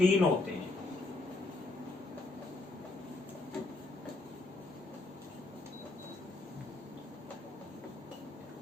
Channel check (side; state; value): right; quieter; 3.1 dB